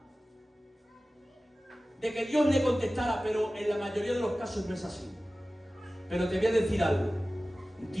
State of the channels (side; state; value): both; normal; correlation 0.96